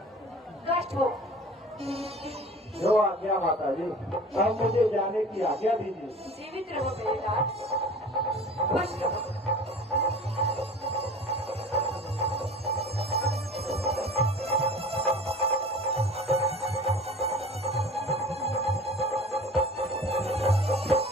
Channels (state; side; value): normal; both; correlation 0.41